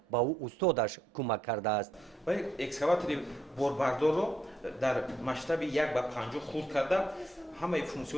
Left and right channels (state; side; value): normal; both; correlation 0.75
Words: ба ӯ устодаш кӯмак кардааст. экскаватори борбардорро дар масштаби 1:50 хурд карда ҳамаи